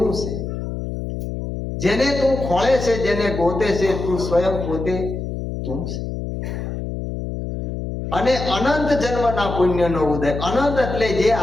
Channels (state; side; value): noise; left; hum, 5 dB below the sound